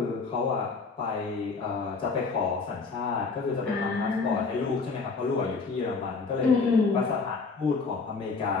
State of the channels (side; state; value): right; quieter; 4.4 dB